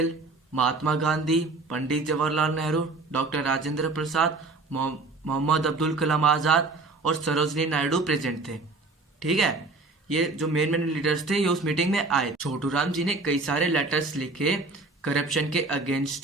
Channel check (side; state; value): left; quieter; 3.6 dB